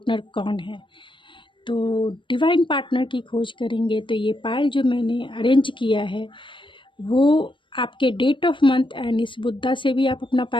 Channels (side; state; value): right; late; 0.24 ms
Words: कौन है। तो डिवाइन पार्टनर की खोज करेंगे तो ये पायल जो मैंने अरेंज किया है वो आपके डेट ऑफ मंथ एंड इस बुद्धा से भी आप अपना